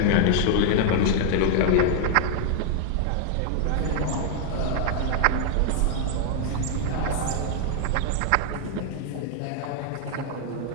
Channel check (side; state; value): both; different; correlation -0.01